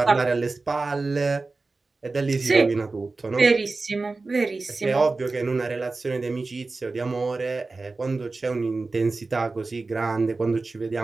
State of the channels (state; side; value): quieter; left; 3.7 dB